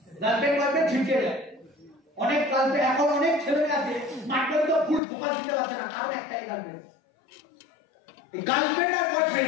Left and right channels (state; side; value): drops out; right; at 5.0 s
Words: গার্লফ্রেন্ড বয়ফ্রেন্ড ছিটকে যায়। অনেক গার্লফ্রেন্ড এখন অনেক ছেলে আছে স্মার্ট ভ্যালু তো ফুল ফোকাস দিতে পারছে না, কারণ একটাই গার্লফ্রেন্ড। এই গার্লফ্রেন্ড আর